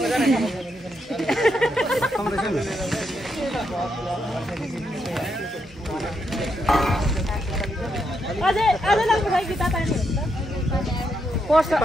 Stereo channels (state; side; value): normal; both; correlation 0.80